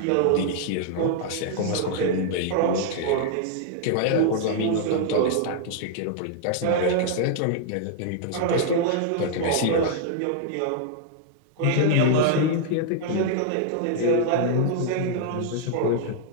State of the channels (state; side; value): different; both; correlation -0.01